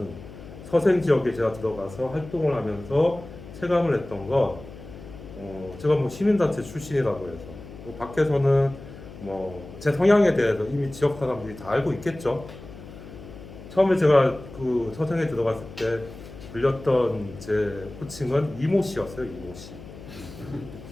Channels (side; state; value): left; noise; hum, 15 dB below the sound